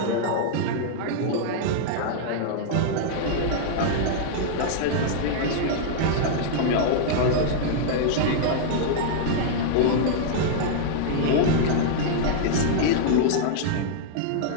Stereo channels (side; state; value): both; different; correlation -0.01